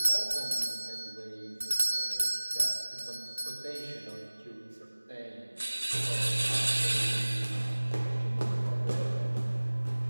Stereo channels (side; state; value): both; inverted; correlation -1.00